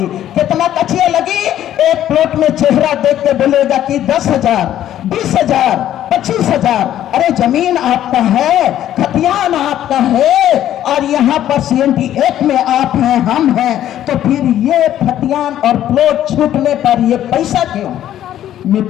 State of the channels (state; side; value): quieter; right; 11.8 dB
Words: कितना कचिया लगी? एक प्लॉट में चेहरा देख के बोलेगा कि 10,000, 20,000, 25,000। अरे जमीन आपका है, खतियान आपका है, और यहाँ पर CMT एक में आप हैं, हम हैं, तो फिर ये खतियान और प्लॉट छूटने पर ये पैसा क्यों?